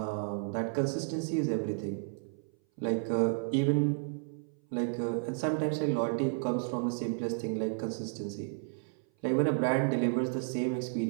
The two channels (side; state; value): left; silent; 56 dB below the other